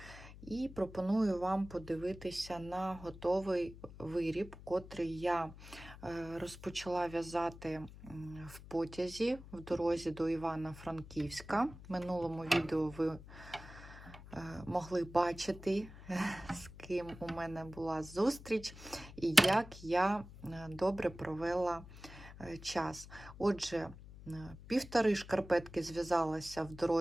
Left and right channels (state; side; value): noise; left; hum, 16 dB below the sound